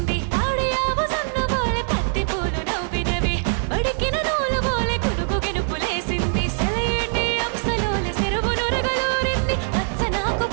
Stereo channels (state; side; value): silent; left; digital silence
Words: ఆడియావు సన్ను బోలే పత్తి పూలు నవ్వినవి బడికిన నూలు బోలే కునుకు గెనుపులేసింది సెలయేటి అంశలోలే చెరువు నురగలూరింది పచ్చనాకు